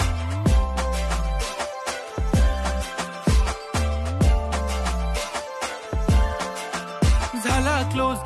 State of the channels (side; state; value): both; identical; correlation 1.00